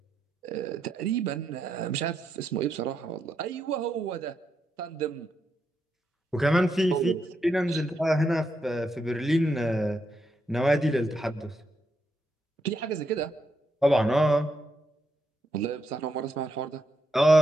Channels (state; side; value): normal; both; correlation 0.81